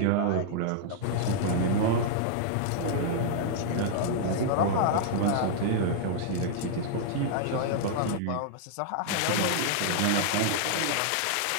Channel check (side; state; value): both; different; correlation -0.01